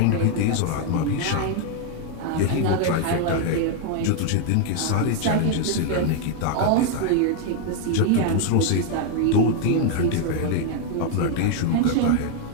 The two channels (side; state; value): both; different; correlation 0.00